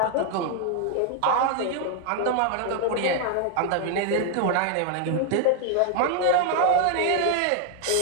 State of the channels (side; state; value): both; different; correlation 0.00